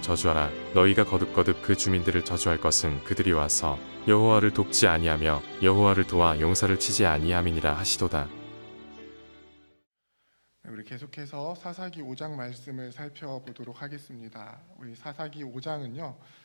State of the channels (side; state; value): both; inverted; correlation -1.00